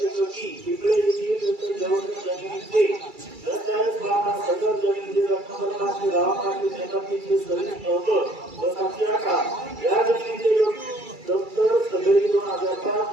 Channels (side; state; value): left; late; 2.3 ms